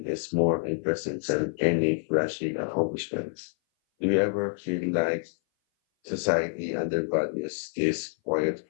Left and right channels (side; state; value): right; silent; 58 dB below the other